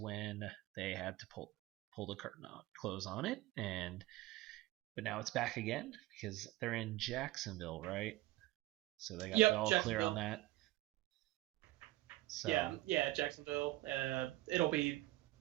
they had to pull the curtain on, close on it, but now it's back again because they're in Jacksonville, right? So they got the all clear on that. So yeah, Jacksonville. It'll be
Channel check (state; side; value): quieter; left; 17.8 dB